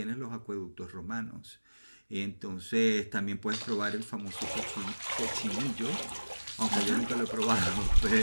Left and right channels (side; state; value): both; inverted; correlation -1.00